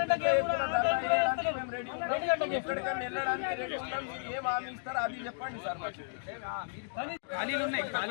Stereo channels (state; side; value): silent; right; digital silence